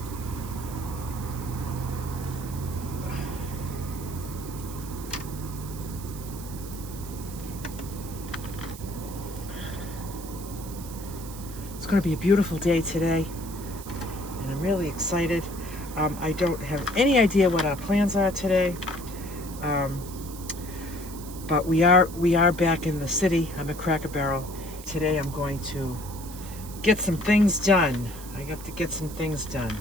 It's going to be a beautiful day today. And I'm really excited. I don't have any idea what our plans are today, but we are back in the city. I'm at Cracker Barrel. Today I'm going to get some things done. I have to get some things done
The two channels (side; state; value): right; noise; hiss, 15 dB below the sound